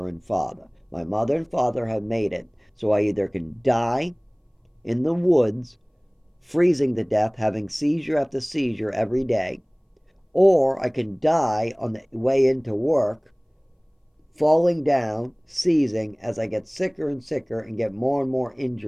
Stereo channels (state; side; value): identical; both; correlation 1.00